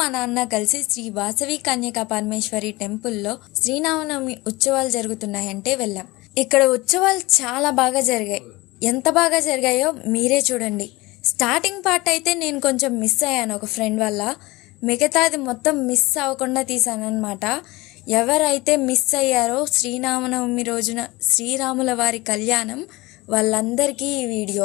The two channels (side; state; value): right; quieter; 21.6 dB